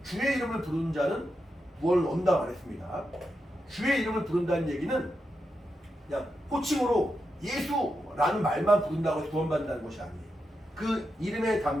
주의 이름을 부르는 자는 구원을 얻는다 말했습니다. 주의 이름을 부른다는 얘기는 그냥 호칭으로 예수라는 말만 부른다고 해서 구원받는다는 것이 아니에요. 그 이름에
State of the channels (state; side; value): normal; both; correlation 0.87